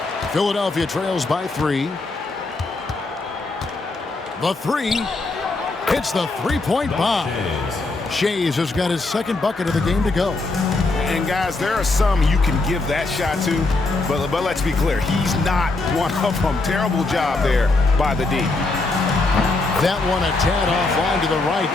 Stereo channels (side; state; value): right; quieter; 3.3 dB